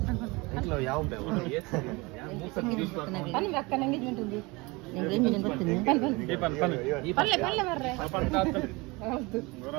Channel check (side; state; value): left; quieter; 25.0 dB